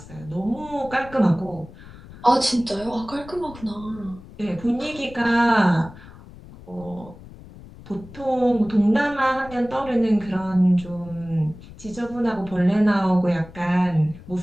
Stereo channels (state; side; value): noise; left; rumble, 18 dB below the sound